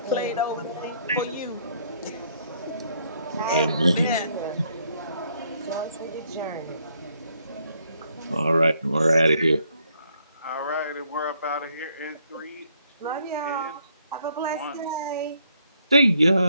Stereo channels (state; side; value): inverted; both; correlation -0.70